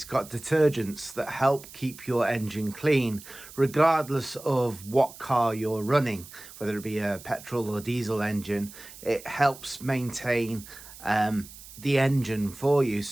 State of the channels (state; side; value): noise; right; hiss, 17 dB below the sound